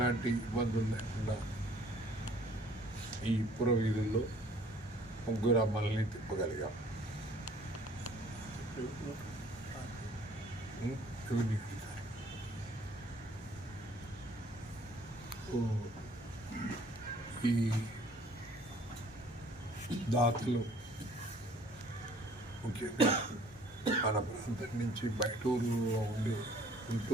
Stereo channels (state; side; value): normal; both; correlation 0.56